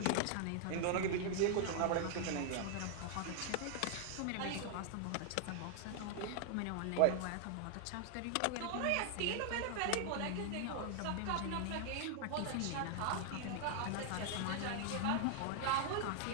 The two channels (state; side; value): different; both; correlation 0.00